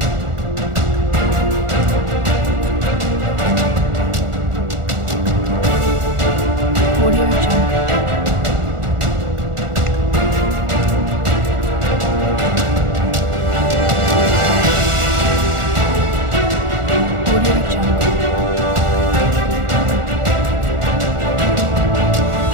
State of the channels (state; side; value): late; left; 1.4 ms